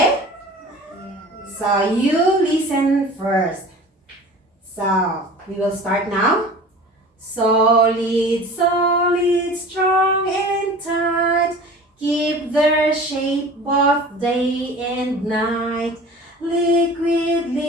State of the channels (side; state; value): both; normal; correlation 0.41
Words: So you listen first. So we will start now. Solid, solid, strong and tight, keep their shape both day and night. Liquid,